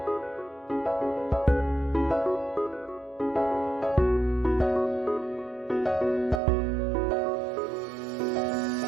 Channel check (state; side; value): drops out; left; at 6.4 s